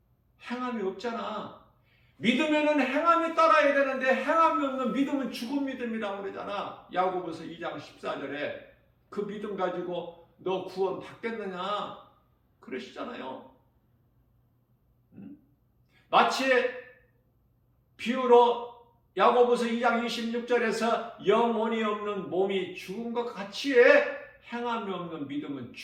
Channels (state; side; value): identical; both; correlation 1.00